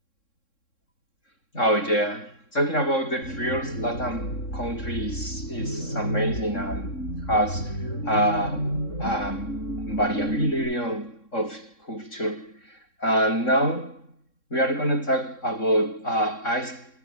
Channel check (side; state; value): right; late; 3.7 ms